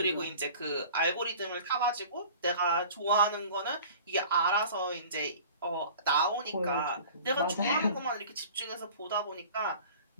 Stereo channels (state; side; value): inverted; both; correlation -0.44